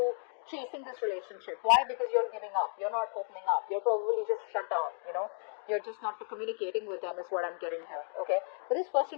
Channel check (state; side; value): silent; right; 55 dB below the other